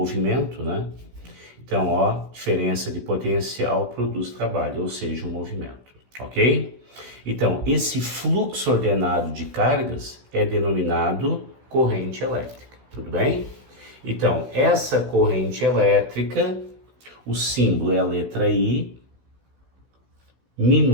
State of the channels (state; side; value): late; left; 16 ms